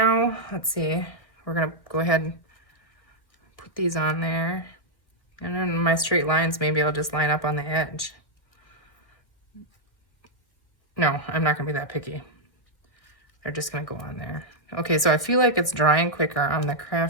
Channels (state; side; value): late; right; 1.6 ms